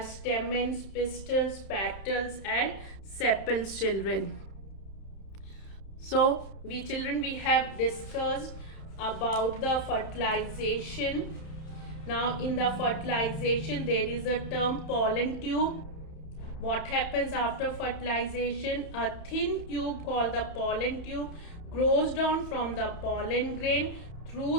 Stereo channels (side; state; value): right; late; 31 ms